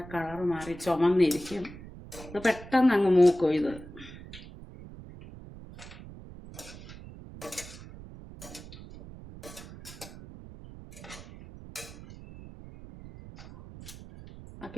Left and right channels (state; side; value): noise; right; rumble, 15 dB below the sound